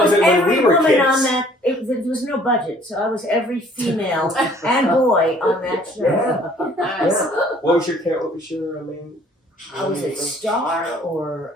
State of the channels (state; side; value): normal; both; correlation 0.57